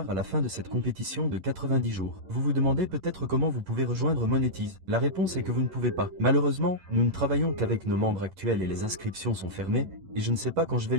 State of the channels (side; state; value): left; late; 11 ms